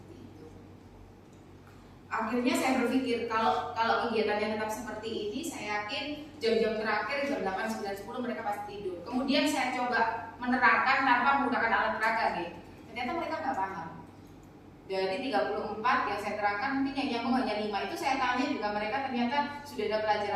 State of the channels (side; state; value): both; identical; correlation 1.00